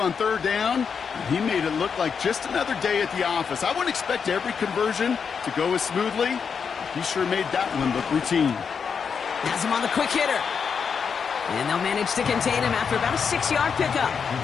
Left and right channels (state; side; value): quieter; right; 6.3 dB